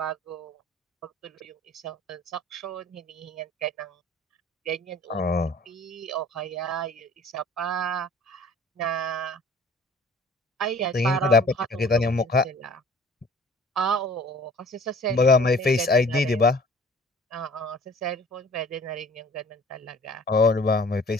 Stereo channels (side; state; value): both; normal; correlation 0.50